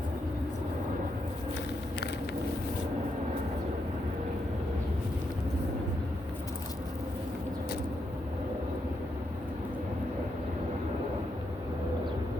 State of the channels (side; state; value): both; normal; correlation 0.81